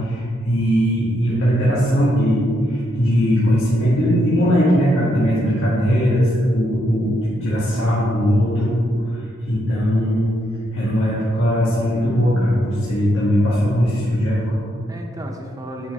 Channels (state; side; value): normal; both; correlation 0.79